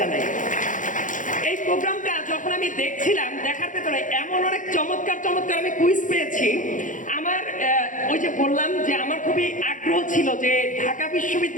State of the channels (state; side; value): late; right; 0.38 ms